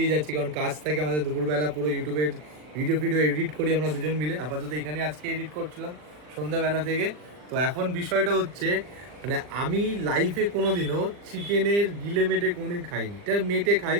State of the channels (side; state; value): left; late; 40 ms